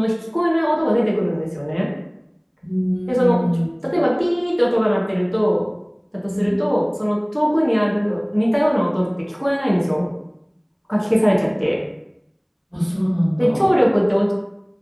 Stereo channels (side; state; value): both; identical; correlation 1.00